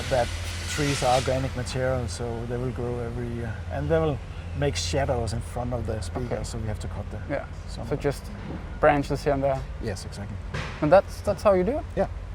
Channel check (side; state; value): both; identical; correlation 1.00